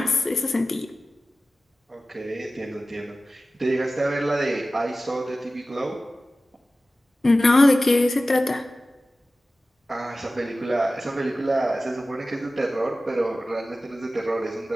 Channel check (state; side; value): normal; both; correlation 0.95